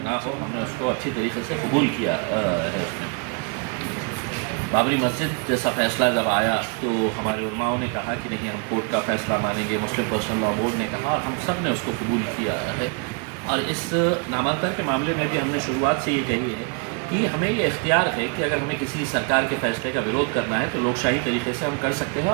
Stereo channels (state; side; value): quieter; left; 36.4 dB